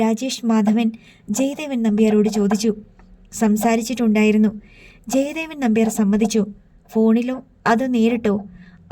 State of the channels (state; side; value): identical; both; correlation 1.00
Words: രാജേഷ് മാധവൻ ജയദേവൻ നമ്പ്യാരോട് ചോദിച്ചു. സംസാരിച്ചിട്ടുണ്ടായിരുന്നു. ജയദേവൻ നമ്പ്യാർ സമ്മതിച്ചു. ഫോണിലോ അതോ നേരിട്ടോ?